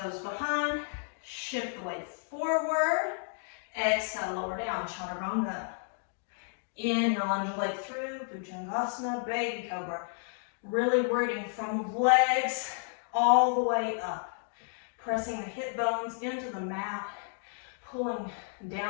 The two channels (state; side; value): silent; right; 56 dB below the other